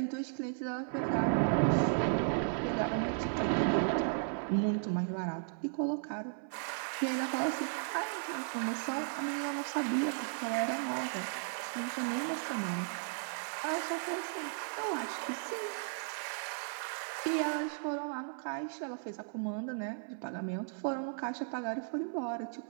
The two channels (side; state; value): left; silent; 54 dB below the other